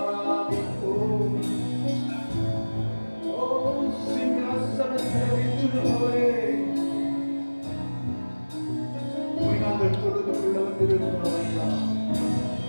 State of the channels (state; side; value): inverted; both; correlation -1.00